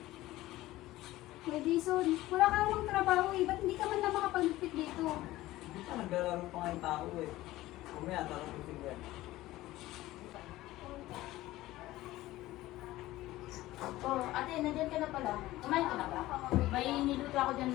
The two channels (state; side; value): quieter; right; 16.8 dB